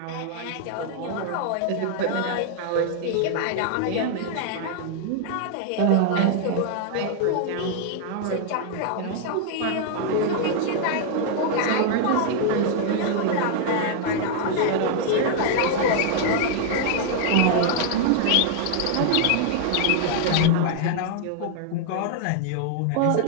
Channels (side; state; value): both; different; correlation 0.00